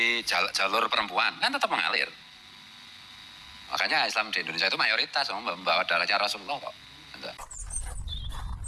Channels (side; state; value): both; identical; correlation 1.00